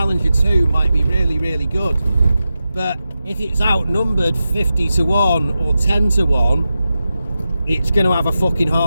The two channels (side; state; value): both; inverted; correlation -0.91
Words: 2 might be really good, but if it's outnumbered 50 to 1 or 10 to 1, it's going to have a fucking